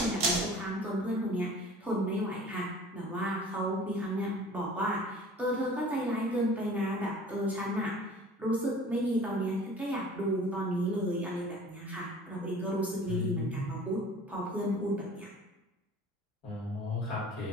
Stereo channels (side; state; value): both; normal; correlation 0.46